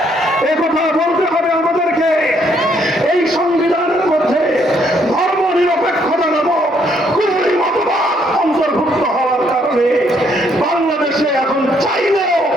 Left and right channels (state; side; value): normal; both; correlation 0.69